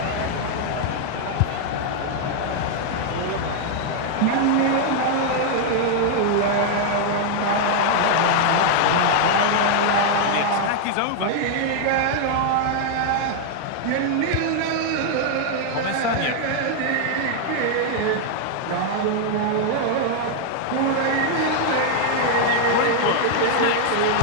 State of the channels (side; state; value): both; different; correlation 0.00